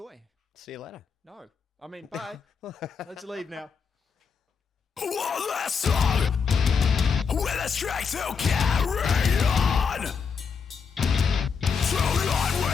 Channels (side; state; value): right; quieter; 5.9 dB